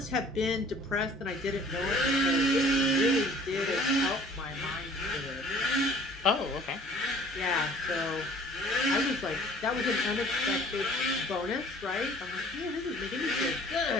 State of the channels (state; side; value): normal; both; correlation 0.52